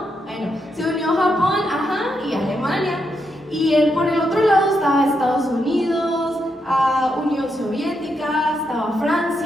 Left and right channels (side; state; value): both; normal; correlation 0.82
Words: Bueno, se unió Japón, y Alemania. Y por el otro lado estaba Estados Unidos, Unión Soviética, estaba